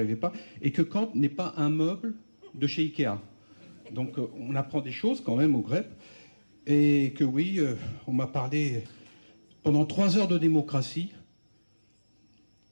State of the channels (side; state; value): both; inverted; correlation -1.00